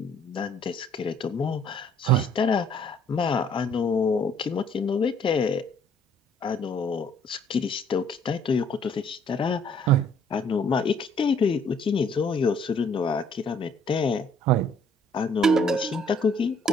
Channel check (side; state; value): both; normal; correlation 0.61